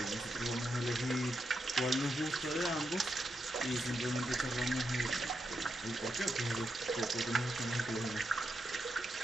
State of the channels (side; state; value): both; normal; correlation 0.84